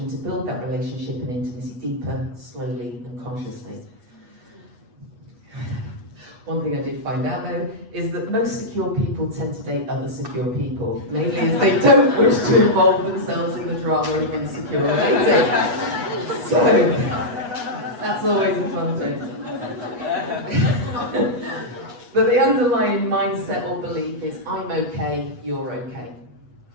to build that relationship and intimacy deeper, slowly and consciously. One thing I did find out though is that most secure people tend to date other secure people, mainly as they don't wish to involve themselves in the drama of insecure relating. So, that's always a fun thing. But the underlying mindset or belief is, I'm okay, you're okay.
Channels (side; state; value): left; late; 8.2 ms